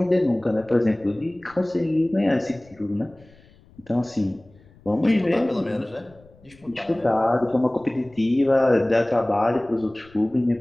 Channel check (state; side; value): noise; left; rumble, 27 dB below the sound